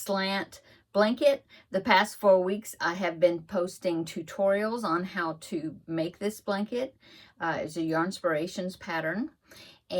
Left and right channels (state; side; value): identical; both; correlation 1.00